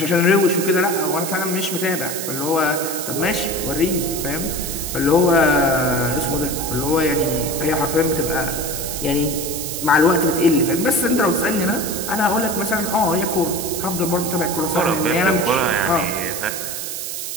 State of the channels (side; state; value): right; noise; hiss, 5 dB below the sound